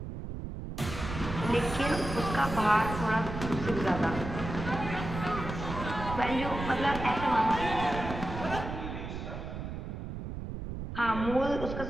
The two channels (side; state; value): right; noise; rumble, 7 dB below the sound